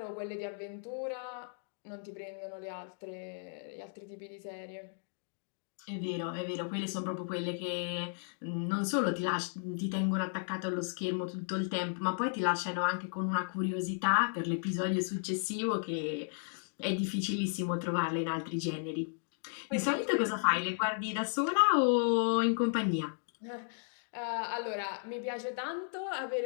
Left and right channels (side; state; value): right; silent; digital silence